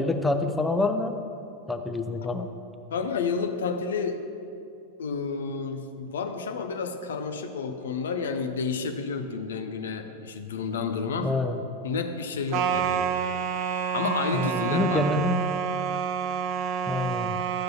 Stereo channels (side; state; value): both; normal; correlation 0.17